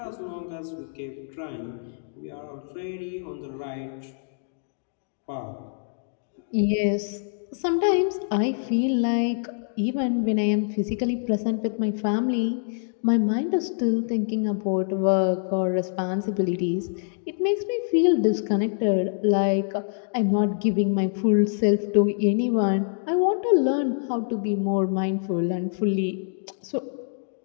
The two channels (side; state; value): right; silent; digital silence